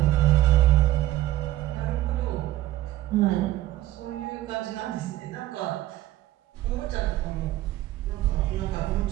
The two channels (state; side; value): quieter; left; 15.2 dB